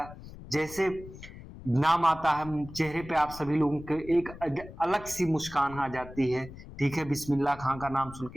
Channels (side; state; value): left; noise; rumble, 16 dB below the sound